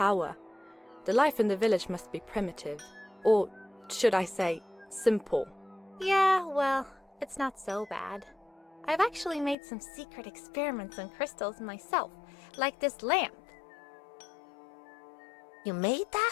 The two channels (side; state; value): right; drops out; at 9.6 s